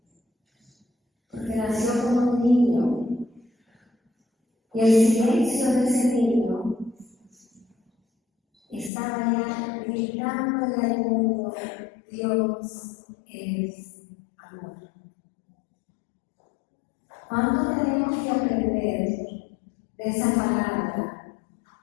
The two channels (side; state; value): right; drops out; at 8.9 s